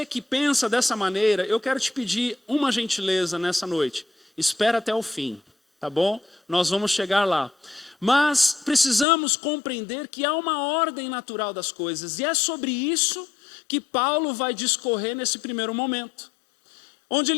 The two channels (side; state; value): right; drops out; at 9.1 s